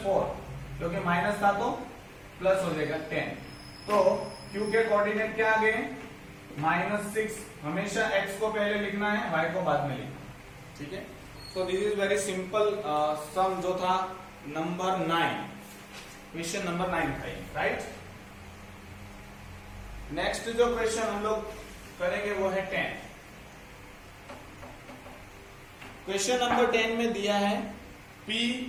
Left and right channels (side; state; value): both; identical; correlation 1.00